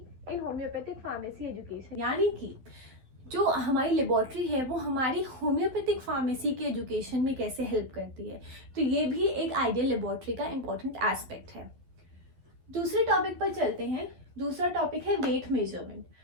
in homoeopathic pharmacy education, यानी कि जो हमारी लेबोरेटरी है वो हमारी होम्योपैथिक फार्मेसी के एजुकेशन में कैसे हेल्प करती है। तो ये भी एक आइडियल लेबोरेटरी का इंपॉर्टेंट एस्पेक्ट है। दूसरे टॉपिक पर चलते हैं। दूसरा टॉपिक है वेट मेजरमेंट।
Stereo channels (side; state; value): left; late; 12 ms